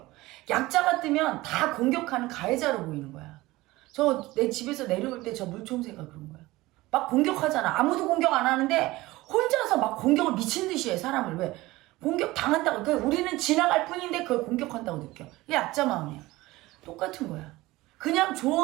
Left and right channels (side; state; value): left; quieter; 19.2 dB